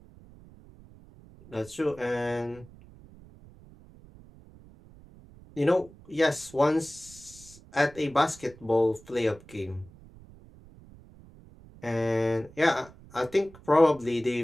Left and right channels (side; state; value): right; noise; rumble, 22 dB below the sound